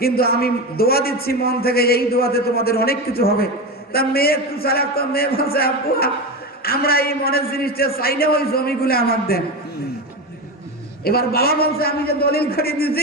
কিন্তু আমি দোয়া দিচ্ছি মন থেকে এই দোয়াতে তোমাদের অনেক কিছু হবে তা মেয়ে একটু চালাক তো মেয়ে বলছে আব্বু আমরা এই মনের জিনিসটা চাই না ওই জমিগুলো আমার দেন এবার বাবা বলছে আমি যে দলিল করে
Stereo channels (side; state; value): both; normal; correlation 0.20